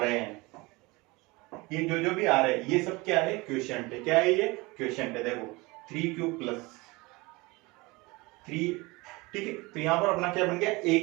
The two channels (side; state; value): left; quieter; 23.8 dB